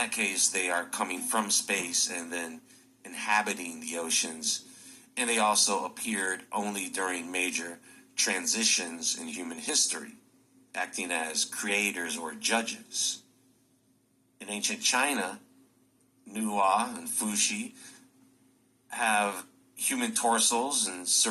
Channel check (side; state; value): both; identical; correlation 1.00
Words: case, they are coming from space and then inhabiting the oceans, and they also appeared only during major transitions in human history, acting as creators or judges. In ancient China, Nuwa and Fuxi have human torsos and